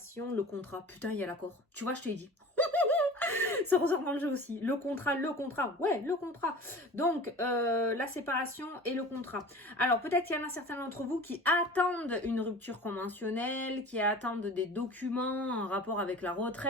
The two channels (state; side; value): normal; both; correlation 0.39